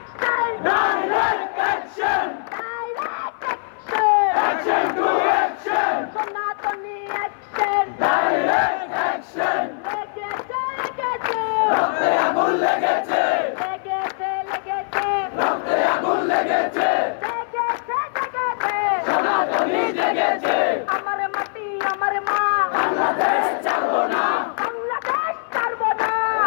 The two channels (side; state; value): right; silent; 59 dB below the other